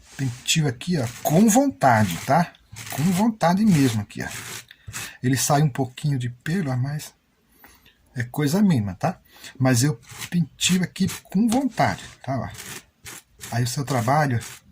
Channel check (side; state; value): both; identical; correlation 1.00